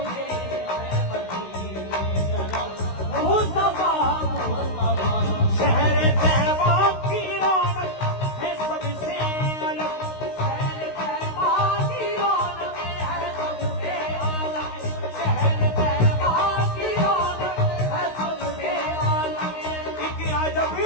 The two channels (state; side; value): late; right; 16 ms